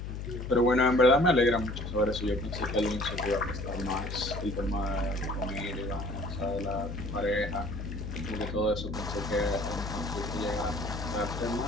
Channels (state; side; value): noise; left; hum, 6 dB below the sound